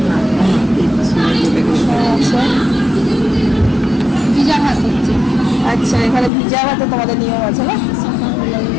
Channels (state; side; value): drops out; right; at 6.3 s